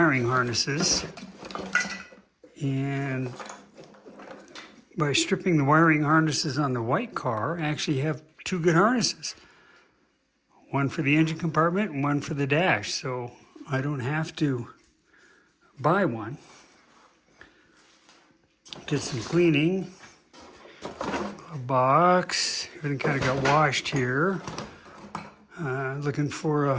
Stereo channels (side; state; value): both; identical; correlation 1.00